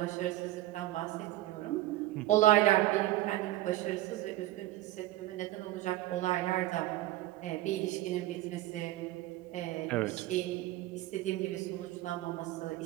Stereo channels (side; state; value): left; quieter; 16.0 dB